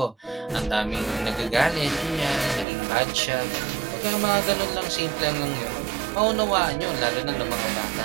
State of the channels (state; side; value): drops out; left; at 2.7 s